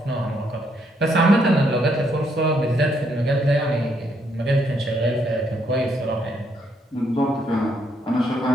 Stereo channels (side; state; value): both; normal; correlation 0.73